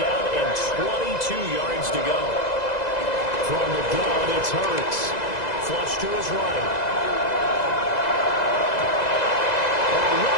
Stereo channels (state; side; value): late; right; 2.0 ms